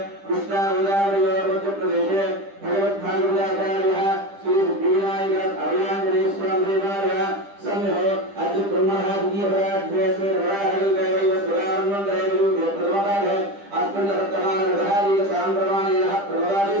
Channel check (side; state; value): left; late; 10 ms